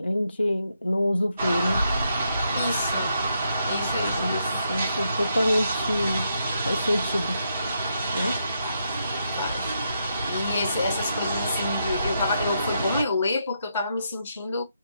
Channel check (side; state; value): both; inverted; correlation -0.80